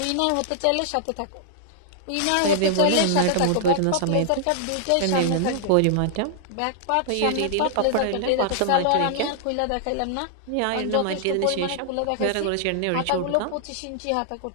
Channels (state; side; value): different; both; correlation -0.01